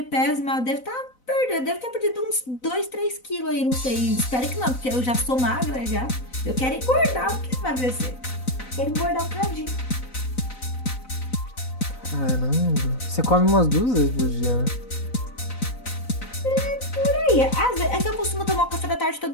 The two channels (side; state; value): right; late; 4.0 ms